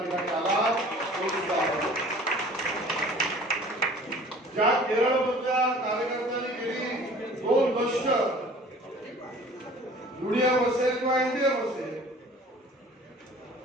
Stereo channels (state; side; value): normal; both; correlation 0.48